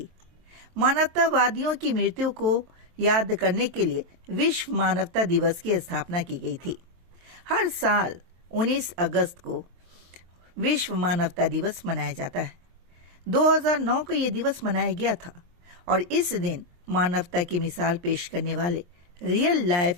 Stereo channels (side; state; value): left; late; 23 ms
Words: मानवतावादियों की मृत्यु को याद करने के लिए विश्व मानवता दिवस की स्थापना की गई थी। हर साल 19 अगस्त को विश्व मानवता दिवस मनाया जाता है। 2009 को यह दिवस मनाया गया था और इस दिन मानवता की मिसाल पेश करने वाले रियल